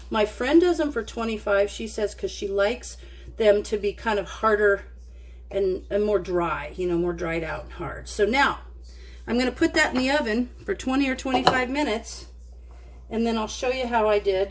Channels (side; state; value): both; identical; correlation 1.00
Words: My friend does them for 25. She says because she likes them to be kind of harder and more dry, you know, more dried out and hard. So now I'm going to put that in the oven for 20 or 25 minutes, and then I'll show you how I